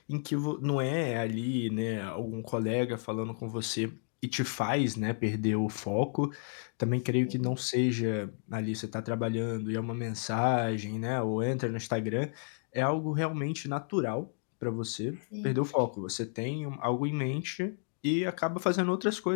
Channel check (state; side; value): silent; right; digital silence